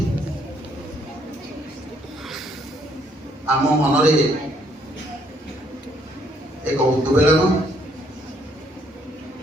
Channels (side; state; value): both; normal; correlation 0.68